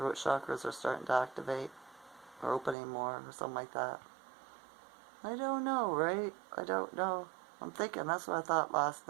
chakras are starting to activate, or opening more, or something like that. I don't know, right? I don't know. I'm thinking that's what I thought last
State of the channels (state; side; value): drops out; left; at 2.8 s